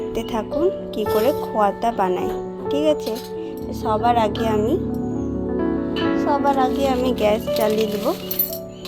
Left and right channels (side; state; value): both; identical; correlation 1.00